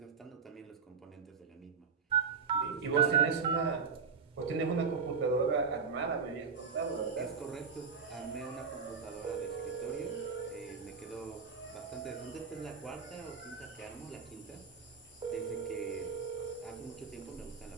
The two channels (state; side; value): quieter; left; 5.6 dB